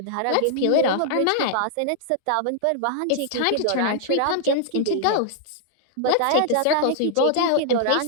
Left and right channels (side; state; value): both; different; correlation -0.01